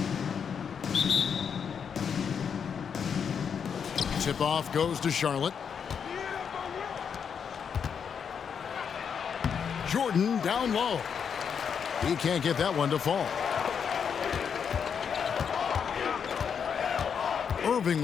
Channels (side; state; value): right; quieter; 7.0 dB